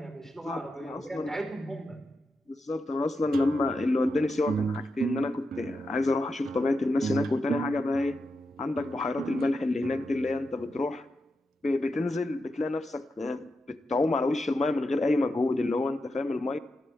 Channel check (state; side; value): normal; both; correlation 0.87